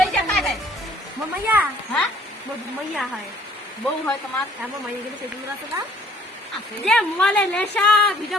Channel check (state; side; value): normal; both; correlation 0.59